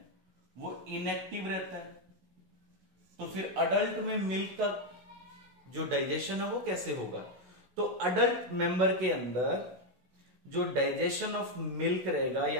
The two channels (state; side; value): late; left; 16 ms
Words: वो इनएक्टिव रहता है, तो फिर अडल्ट में मिल्क का जो डाइजेशन है वो कैसे होगा। तो अडल्ट मेंबर के अंदर जो डाइजेशन ऑफ मिल्क रहेगा,